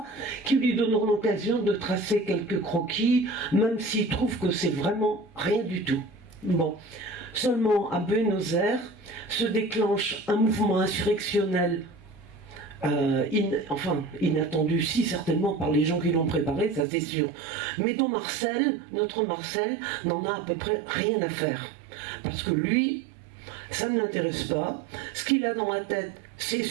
qui lui donneront l'occasion de tracer quelques croquis, même s'il trouve que c'est vraiment rien du tout. Bon, seulement à Buenos Aires se déclenche un mouvement insurrectionnel inattendu, si certainement par les gens qui l'ont préparé, ça c'est sûr, mais dont notre Marcel, n'en a à peu près rien à faire. Parce que lui, ça ne l'intéresse pas. Ce qu'il a dans la tête, c'est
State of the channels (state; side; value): drops out; left; at 16.9 s